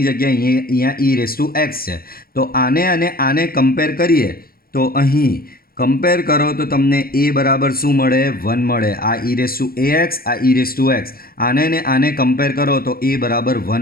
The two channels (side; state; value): right; late; 0.43 ms